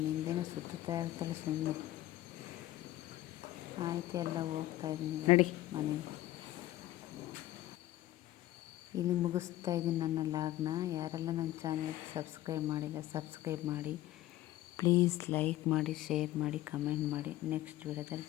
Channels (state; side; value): quieter; right; 15.1 dB